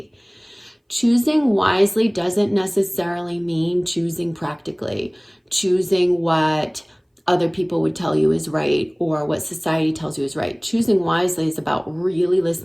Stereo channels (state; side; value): identical; both; correlation 1.00